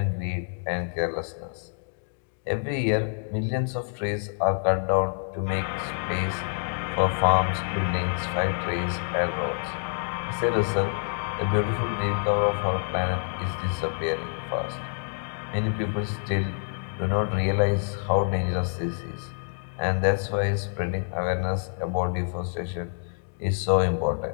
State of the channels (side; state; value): right; silent; digital silence